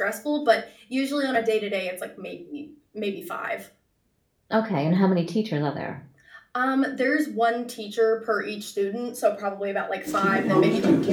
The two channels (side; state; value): both; identical; correlation 1.00